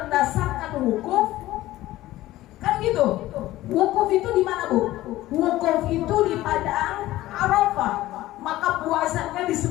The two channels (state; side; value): quieter; right; 16.0 dB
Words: wukuf? Kan gitu. Wukuf itu di mana, Bu? Wukuf itu di padang Arafah. Maka puasanya